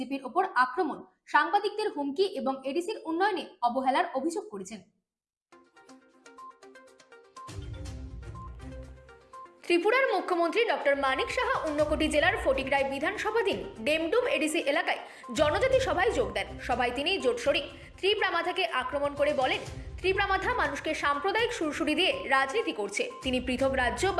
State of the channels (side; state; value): both; identical; correlation 1.00